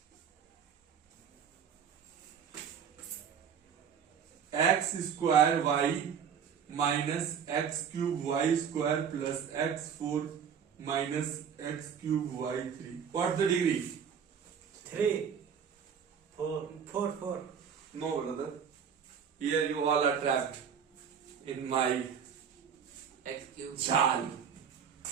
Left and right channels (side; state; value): left; quieter; 7.5 dB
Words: X square y minus x cube y square plus x4 minus x cube y3. What's the degree? 3. 4. No, brother. Here you all are trapped in my X cube. jal.